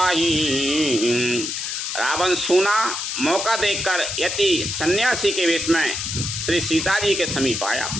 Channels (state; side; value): noise; left; hiss, 3 dB below the sound